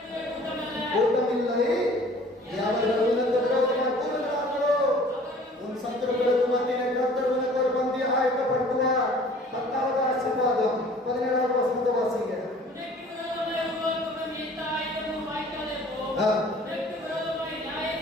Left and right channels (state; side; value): normal; both; correlation 0.50